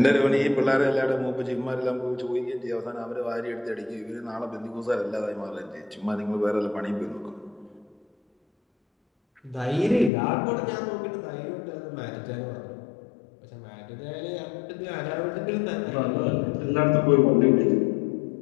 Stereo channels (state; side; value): drops out; right; at 10.1 s